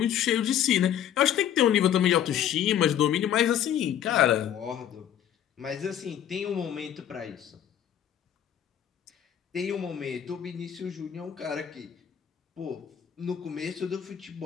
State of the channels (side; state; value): right; quieter; 10.1 dB